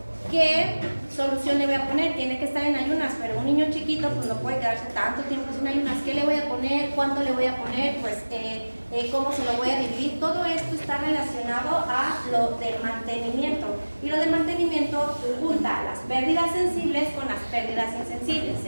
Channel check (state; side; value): inverted; both; correlation -1.00